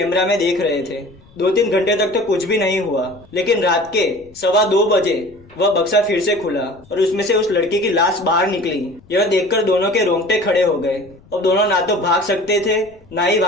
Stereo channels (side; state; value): left; noise; rumble, 27 dB below the sound